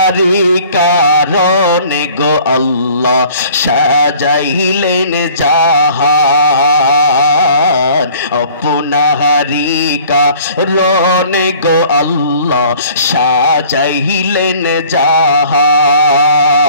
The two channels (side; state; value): both; inverted; correlation -0.51